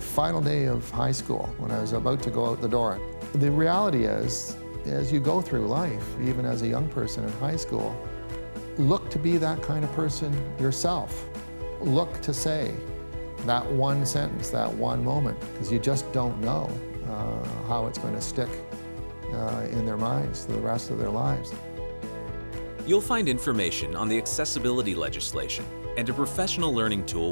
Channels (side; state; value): both; inverted; correlation -1.00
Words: day of high school, when I was about to go out the door. The reality is, as you go through life, even as a young person in high school, look to be that kind of person yourself. Look to say that one sentence, that one moment, because you just don't know how it's going to stick in their minds for the rest of their lives. You'll find information on the accessibility legislation and a professional learning tool